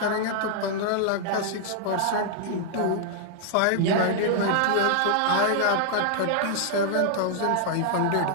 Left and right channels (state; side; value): different; both; correlation -0.01